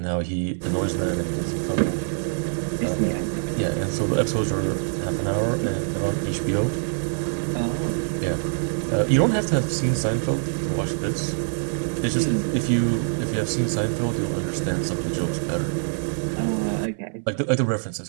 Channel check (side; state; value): left; silent; 61 dB below the other